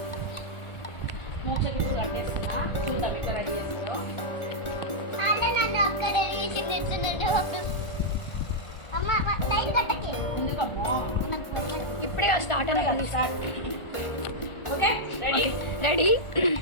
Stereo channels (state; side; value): late; right; 1.5 ms